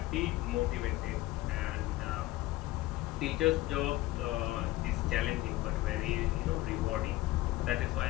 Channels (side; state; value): right; quieter; 17.3 dB